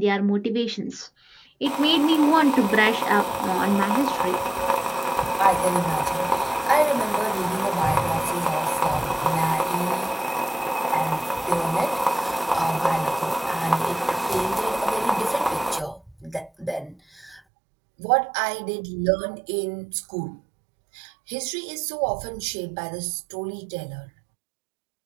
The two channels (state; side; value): drops out; left; at 17.4 s